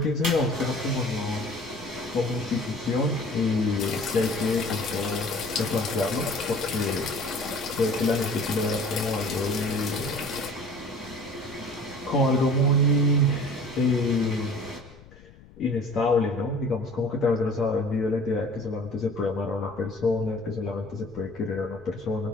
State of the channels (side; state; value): left; noise; rumble, 22 dB below the sound